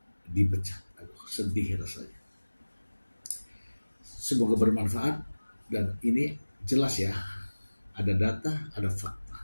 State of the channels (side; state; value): both; inverted; correlation -1.00